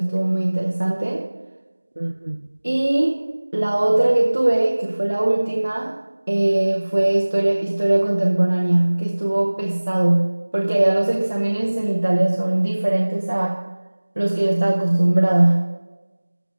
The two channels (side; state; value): both; inverted; correlation -1.00